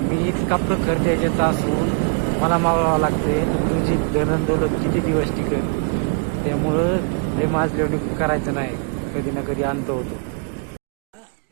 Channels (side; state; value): left; quieter; 36.5 dB